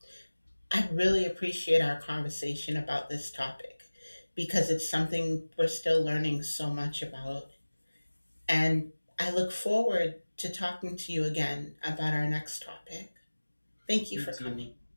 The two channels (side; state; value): both; inverted; correlation -1.00